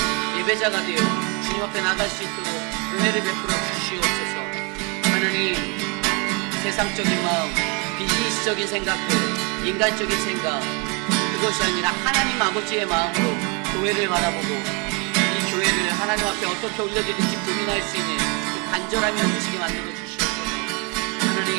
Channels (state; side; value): quieter; left; 31.1 dB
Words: 예배자가 되어 주님 앞에 나갈 수 있도록 은혜를 베풀어 주시옵소서. 하나님 세상적인 마음, 비즈니스적인 생각들, 인간적인 생각 그것이 아니라 하나님 아버지의 마음으로 교회를 바라보고 이 교회를 하나님 앞에 어떻게 올려드릴지 고민할 수 있는 그 간절함이 넘치게 만들어 주시옵소서.